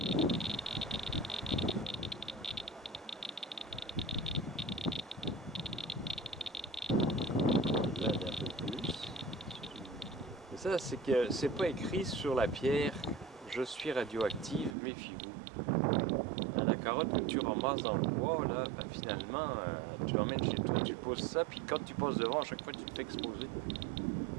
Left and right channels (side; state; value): left; drops out; at 14.8 s